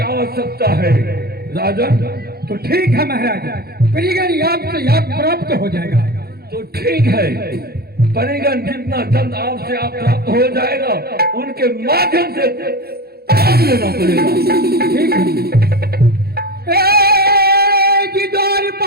आवश्यकता है राजन। तो ठीक है महाराज, परिगण आपसे याद प्राप्त हो जाएगा। तो ठीक है, परिगण जितना जल्द आपसे आप प्राप्त हो जाएगा, उनके माध्यम से काम लेना पड़ेगा। ठीक है।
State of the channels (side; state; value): left; late; 0.46 ms